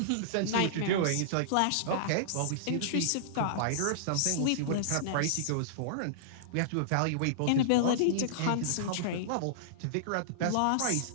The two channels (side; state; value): both; different; correlation -0.02